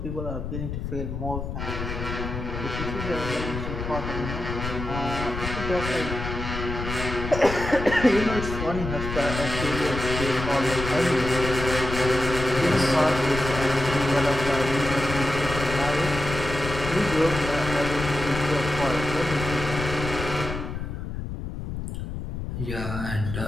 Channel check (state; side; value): noise; left; rumble, 6 dB below the sound